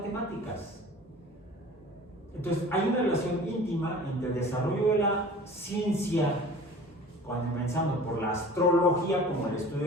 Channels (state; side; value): normal; both; correlation 0.43